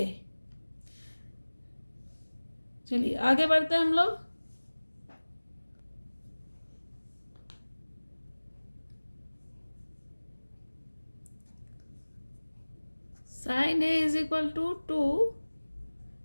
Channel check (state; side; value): inverted; both; correlation -1.00